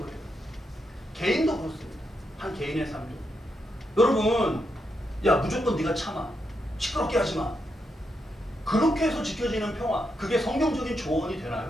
개인도 그렇습니다. 한 개인의 삶도. 여러분, 야 무조건 네가 참아. 시끄럽게 하지 마. 그렇게 해서 지켜지는 평화, 그게 성경적인 조언이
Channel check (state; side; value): normal; both; correlation 0.83